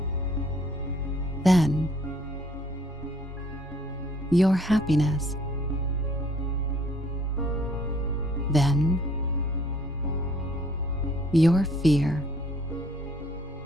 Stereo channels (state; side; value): normal; both; correlation 0.60